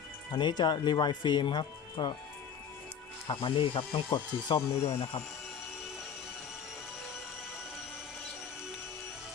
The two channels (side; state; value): right; quieter; 7.3 dB